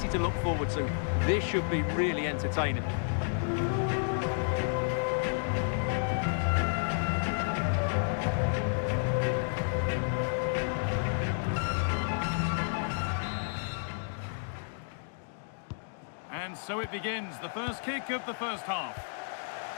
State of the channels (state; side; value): silent; right; digital silence